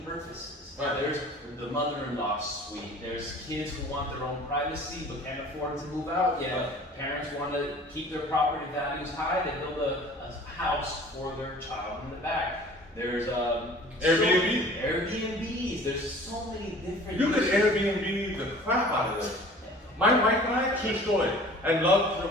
purposes. Right. There's the mother-in-law suite. There's kids who want their own privacy but can't afford to move out yet. Right. Parents want to keep their property values high. They build a house for their child in the back. There's Airbnbs. There's so many different. You could Airbnb the crap out of this. My wife and I, true story, and love to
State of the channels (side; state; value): both; normal; correlation 0.47